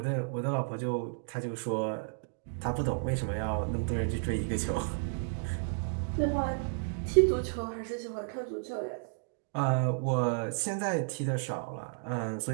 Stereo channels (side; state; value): left; silent; digital silence